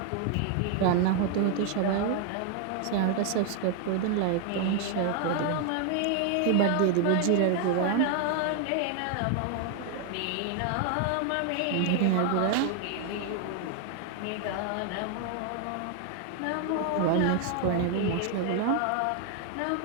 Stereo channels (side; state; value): both; different; correlation 0.00